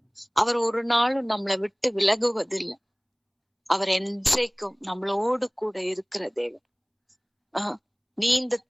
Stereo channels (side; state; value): both; identical; correlation 1.00